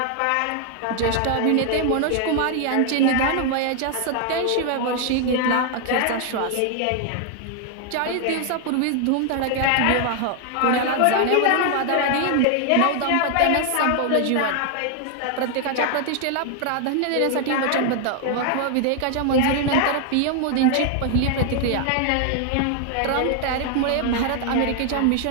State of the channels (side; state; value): both; different; correlation 0.00